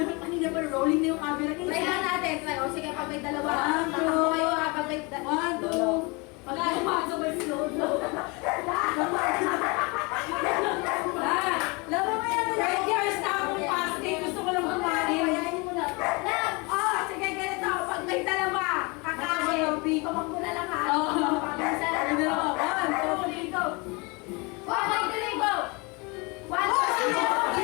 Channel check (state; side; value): quieter; right; 28.2 dB